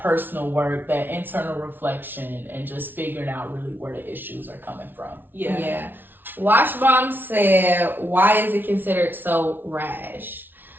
personal work, that internal reflection, and just figuring out really where the issues are coming from. Yeah. Washbomb said, why is it considered so rash?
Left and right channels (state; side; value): late; left; 0.096 ms